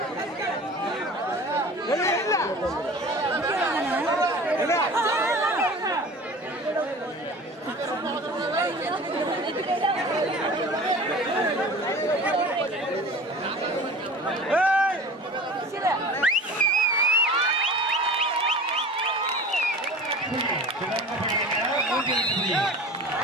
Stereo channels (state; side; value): normal; both; correlation 0.40